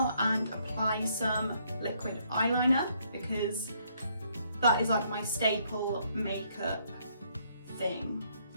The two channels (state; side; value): inverted; both; correlation -0.69